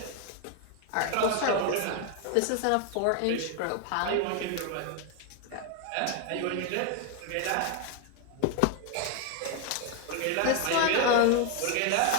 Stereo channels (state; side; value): different; both; correlation 0.01